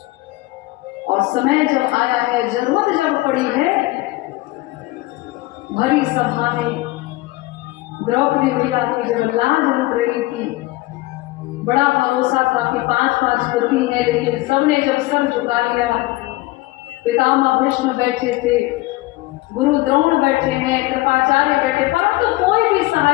और समय जब आया है, जरूरत जब पड़ी है, भरी सभा में द्रौपदी मैया की जब लाज लुट रही थी, बड़ा भरोसा था कि 5-5 पति हैं, लेकिन सबने जब सर झुका लिया, पितामह भीष्म बैठे थे, गुरु द्रोण बैठे हैं, कृपाचार्य बैठे, परंतु तो कोई भी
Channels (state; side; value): quieter; right; 19.7 dB